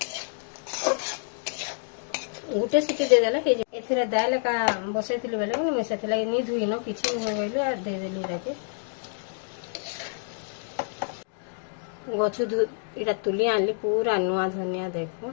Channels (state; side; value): silent; right; digital silence